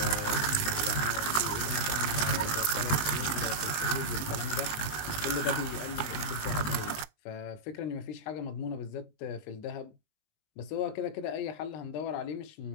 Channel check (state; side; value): late; right; 19 ms